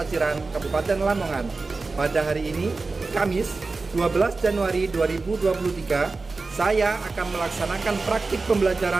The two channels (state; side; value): quieter; left; 3.8 dB